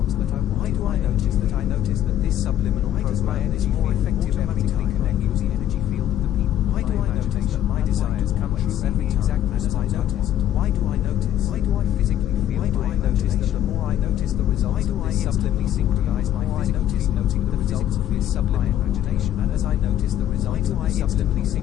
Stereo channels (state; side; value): quieter; right; 11.6 dB